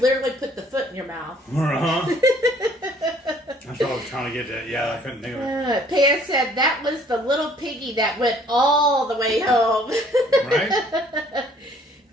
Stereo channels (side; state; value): both; normal; correlation 0.59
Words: put the foot in your mouth. Uh-huh. That's what I was trying to get at. Yeah, I couldn't think of it. Pam said that was the little piggy that went all the way home. Right?